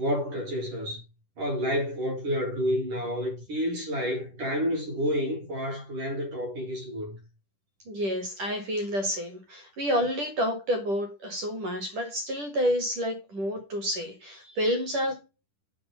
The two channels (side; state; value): left; late; 10 ms